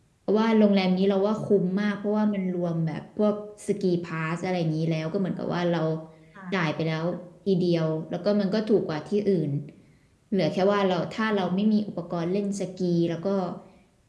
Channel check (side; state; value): both; identical; correlation 1.00